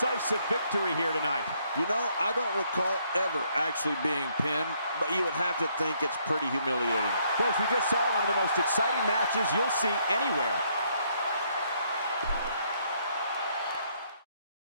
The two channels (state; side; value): inverted; both; correlation -0.70